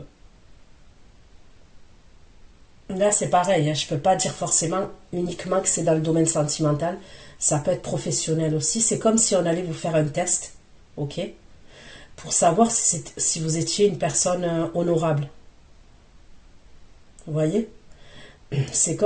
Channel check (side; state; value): both; identical; correlation 1.00